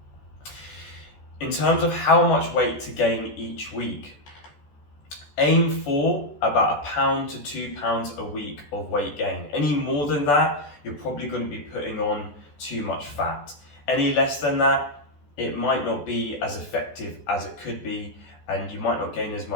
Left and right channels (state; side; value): late; right; 14 ms